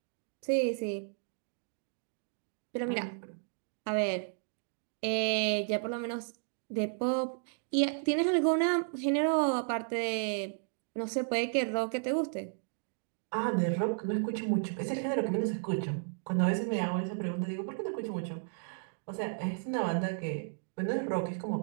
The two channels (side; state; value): left; silent; digital silence